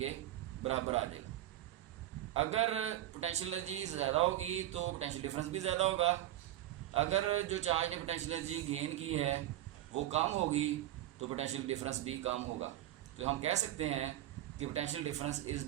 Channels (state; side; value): quieter; left; 13.6 dB